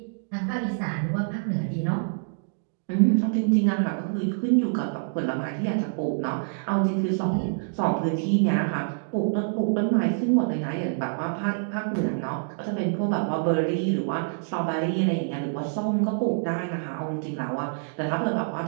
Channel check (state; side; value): silent; left; digital silence